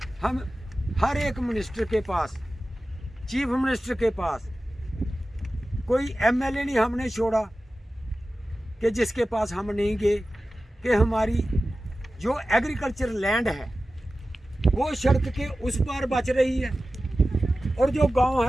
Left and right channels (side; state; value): both; normal; correlation 0.95